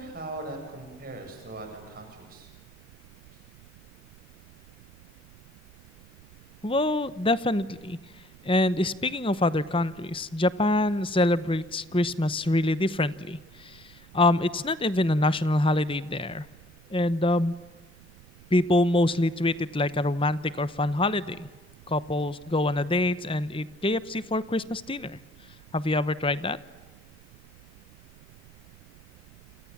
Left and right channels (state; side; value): noise; right; rumble, 24 dB below the sound